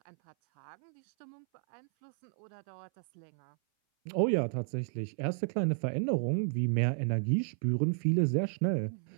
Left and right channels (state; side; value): silent; left; 56 dB below the other